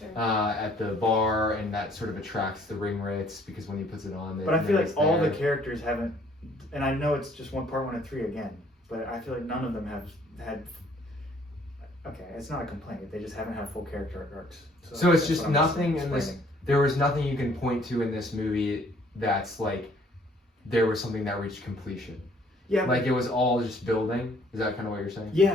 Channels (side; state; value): both; normal; correlation 0.60